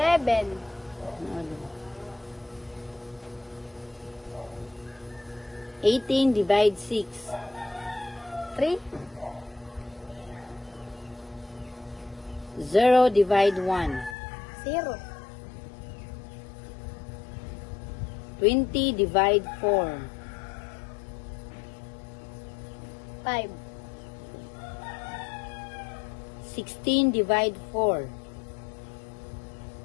Ano? 18 divide 6. 3. 0 divide 1. 0. 20 divide 4. 5. 16 divide 4.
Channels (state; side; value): drops out; right; at 14.2 s